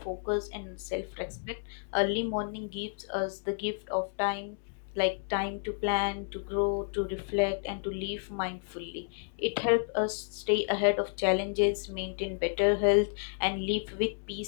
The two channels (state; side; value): silent; right; digital silence